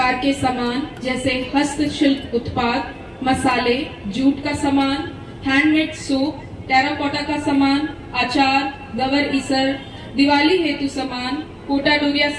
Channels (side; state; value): both; identical; correlation 1.00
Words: के सामान जैसे हस्तशिल्प उत्पाद, मसाले, जूट का सामान, हैंडमेड सूप, टेराकोटा का सामान, अचार, गवर ईसर, दिवाली हेतु सामान, कोटा डोरिया